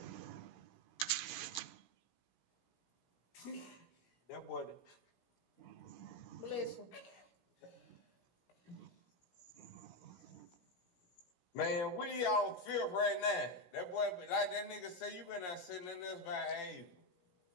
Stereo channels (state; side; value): late; right; 17 ms